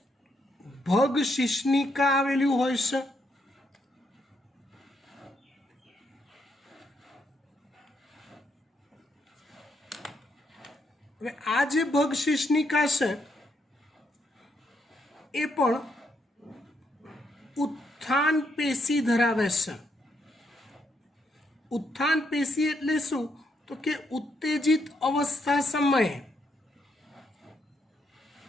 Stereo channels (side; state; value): both; normal; correlation 0.76